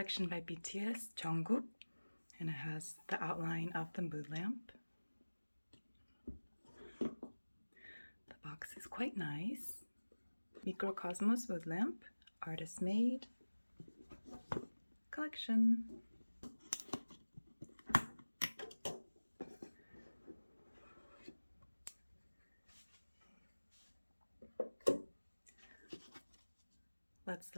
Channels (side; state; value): both; inverted; correlation -1.00